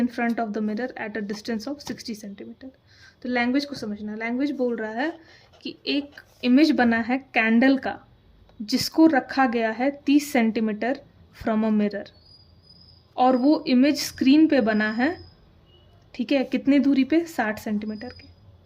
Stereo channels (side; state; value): both; identical; correlation 1.00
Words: front of the mirror at a distance of 60 centimetre. तो language को समझना, language बोल रहा है कि एक इमेज बना है कैंडल का, जिसको रखा गया है 30 सेंटीमीटर फ्रॉम अ मिरर, और वो इमेज स्क्रीन पे बना है, ठीक है, कितनी दूरी पे, 60 सेंटीमीटर के,